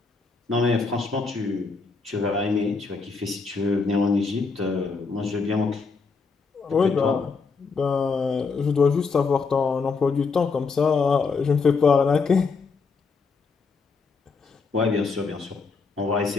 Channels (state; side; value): quieter; right; 4.7 dB